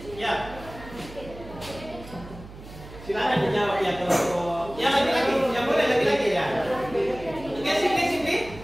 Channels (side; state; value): right; noise; hum, 16 dB below the sound